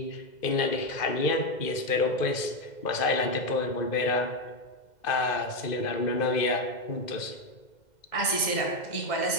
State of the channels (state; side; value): late; right; 2.1 ms